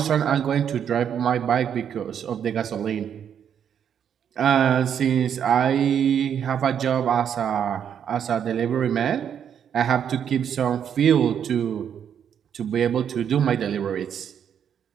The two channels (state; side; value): quieter; left; 8.5 dB